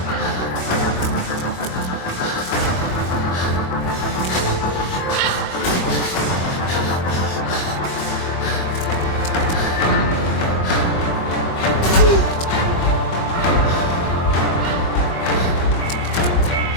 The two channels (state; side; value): late; right; 23 ms